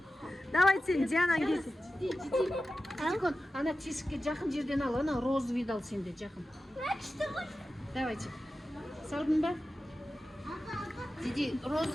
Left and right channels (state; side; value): normal; both; correlation 0.93